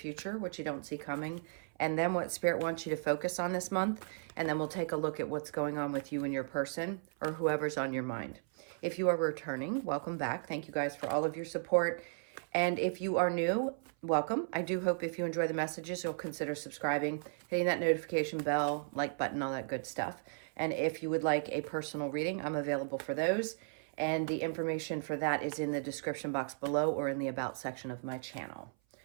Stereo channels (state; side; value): silent; left; 54 dB below the other